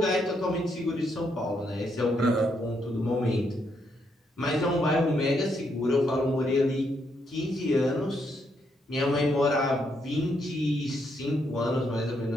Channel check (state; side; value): normal; both; correlation 0.76